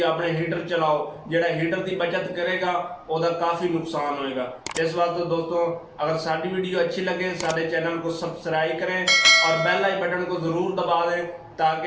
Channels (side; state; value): both; identical; correlation 1.00